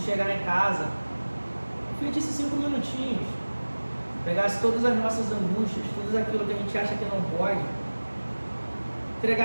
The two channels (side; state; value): both; inverted; correlation -1.00